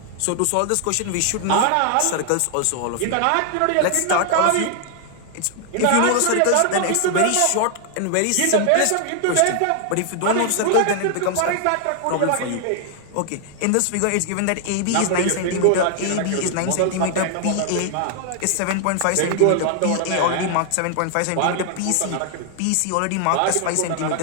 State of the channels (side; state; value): both; different; correlation 0.00